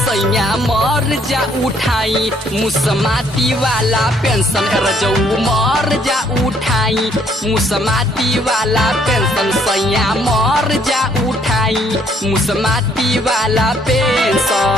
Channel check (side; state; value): both; normal; correlation 0.66